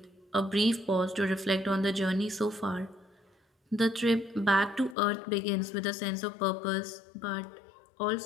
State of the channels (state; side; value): drops out; right; at 5.0 s